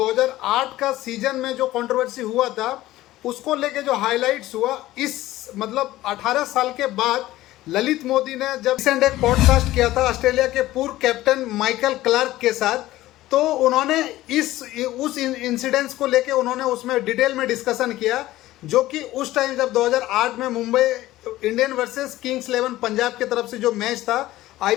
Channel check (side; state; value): right; quieter; 16.0 dB